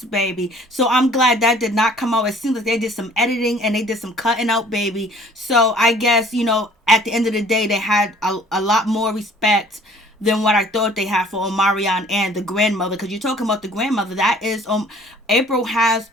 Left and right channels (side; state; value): both; normal; correlation 0.53